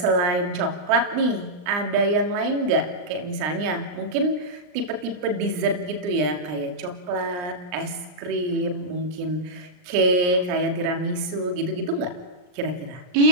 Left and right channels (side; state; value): left; late; 39 ms